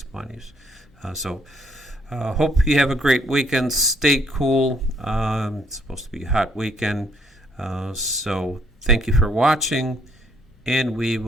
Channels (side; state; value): both; normal; correlation 0.67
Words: monies. Hope you have a great weekend. Stay cool. It's supposed to be a hot weekend. So thank you for watching, and we